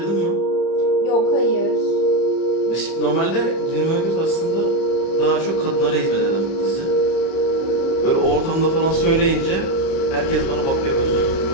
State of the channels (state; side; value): late; right; 30 ms